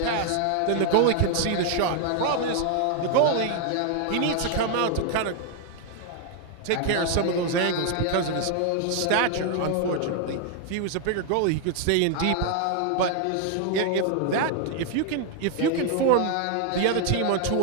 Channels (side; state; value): both; different; correlation 0.00